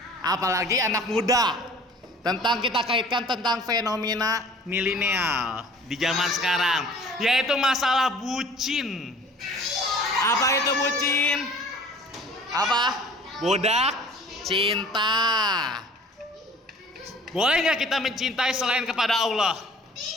Apalagi anak muda. Tentang kita kaitkan tentang fenomena milenial di zaman sekarang, yaitu masalah bucin. Apa itu bucin? Apa? Budak cinta. Boleh nggak kita mencintai selain kepada Allah?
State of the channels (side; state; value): both; normal; correlation 0.48